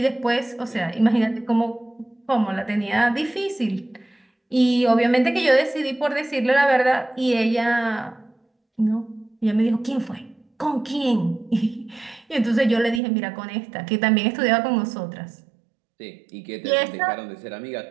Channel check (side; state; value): left; drops out; at 13.0 s